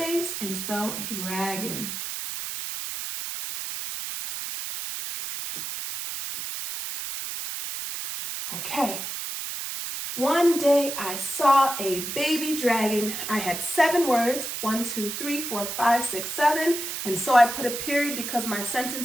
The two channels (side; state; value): right; noise; hiss, 5 dB below the sound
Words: and spell dragon. Okay. One day I saw a baby dragon. I had 7 words, 1, 2, 3, 4, 5, 6, 7. And so I put a period because my